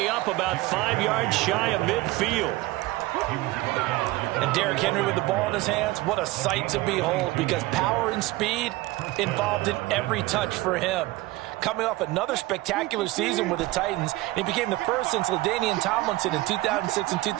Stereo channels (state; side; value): quieter; left; 19.3 dB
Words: up about 5 yards shy of midfield. And Derrick Henry with the ball in his hands, what a sight to behold, because power and speed involved in every touch for him. Coming off another spectacular season with the Titans, he became the first since LaDainian Tomlinson in 2006 and